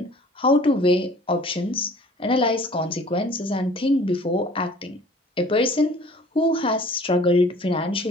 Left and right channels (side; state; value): both; normal; correlation 0.49